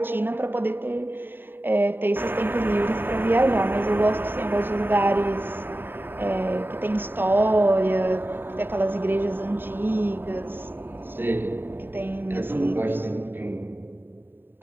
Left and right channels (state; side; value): late; left; 0.098 ms